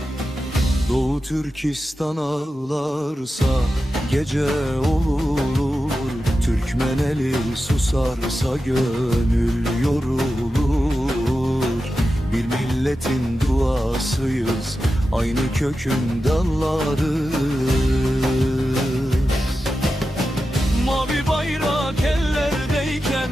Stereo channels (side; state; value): both; normal; correlation 0.91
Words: Doğu Türkistan ağlarsa gece olur, Türkmeneli susarsa gönül yorulur. Bir milletin duasıyız, aynı kökün dallarız. Mavi bayrak ellerdeyken